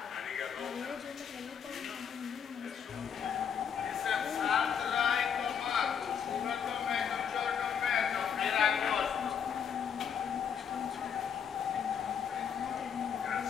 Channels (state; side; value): quieter; right; 7.6 dB